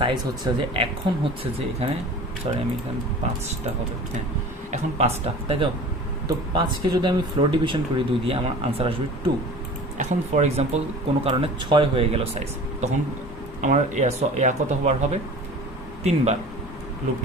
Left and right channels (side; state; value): both; normal; correlation 0.40